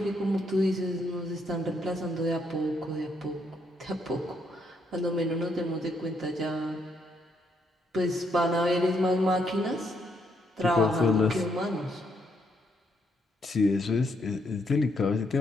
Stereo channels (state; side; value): normal; both; correlation 0.74